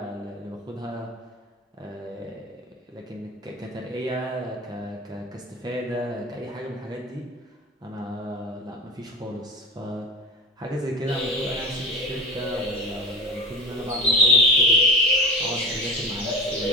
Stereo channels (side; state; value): both; normal; correlation 0.32